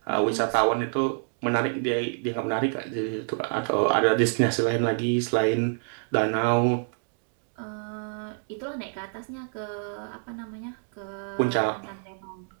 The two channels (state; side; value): silent; left; 60 dB below the other